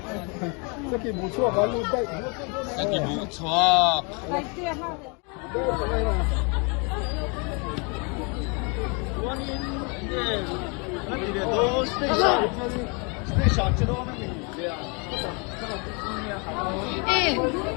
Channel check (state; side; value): quieter; right; 33.3 dB